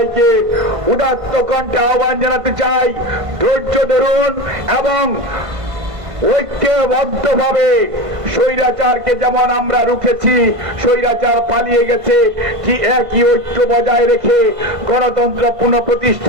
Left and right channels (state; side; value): late; left; 1.5 ms